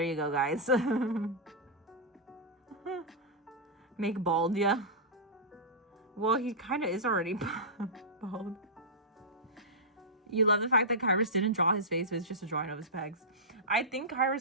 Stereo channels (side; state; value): both; normal; correlation -0.14